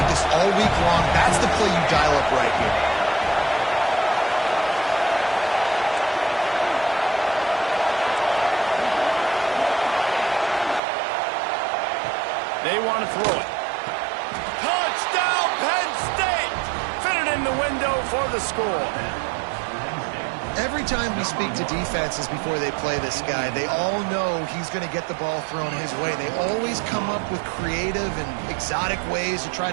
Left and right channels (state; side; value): drops out; left; at 10.8 s